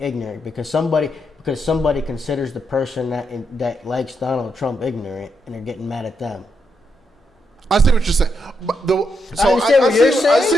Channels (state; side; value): normal; both; correlation 0.81